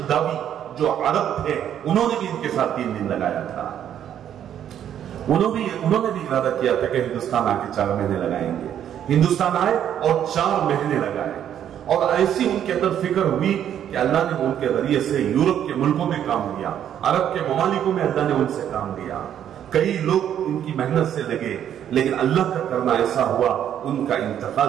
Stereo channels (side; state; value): left; quieter; 9.9 dB